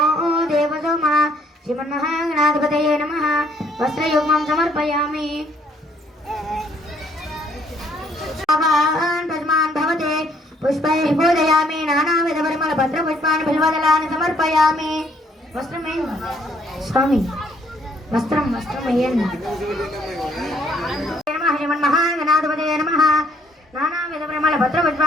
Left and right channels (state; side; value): normal; both; correlation 0.66